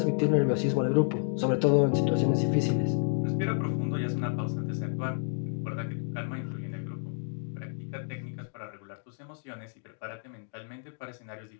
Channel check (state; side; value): silent; right; digital silence